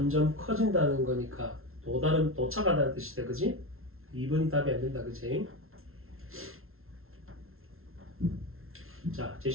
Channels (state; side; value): late; left; 0.62 ms